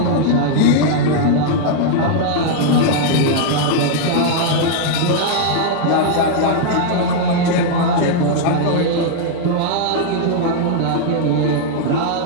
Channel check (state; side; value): different; both; correlation -0.01